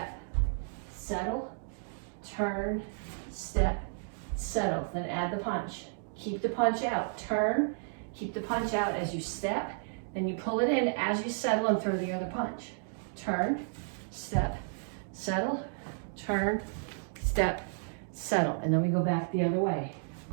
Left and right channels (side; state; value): left; silent; digital silence